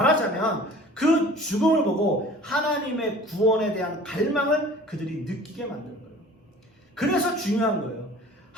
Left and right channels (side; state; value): both; normal; correlation 0.46